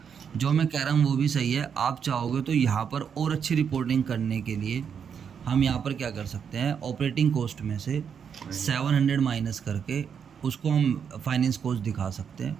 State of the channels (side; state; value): left; quieter; 7.2 dB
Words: जो मैं कह रहा हूँ वो भी सही है। आप चाहोगे तो यहाँ पर और अच्छी रिपोर्टिंग करने के लिए हम यहाँ पर क्या कर सकते हैं, ऑपरेटिंग कॉस्ट में से 700 माइनस करके उसको हम फाइनेंस कॉस्ट दिखा सकते हैं,